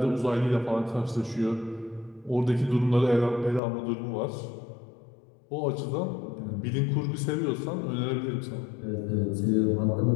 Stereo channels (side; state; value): right; drops out; at 3.6 s